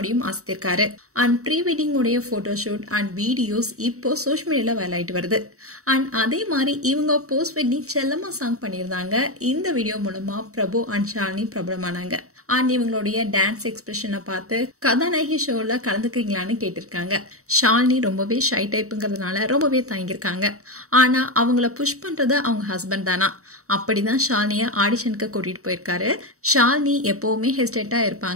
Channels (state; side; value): late; left; 0.64 ms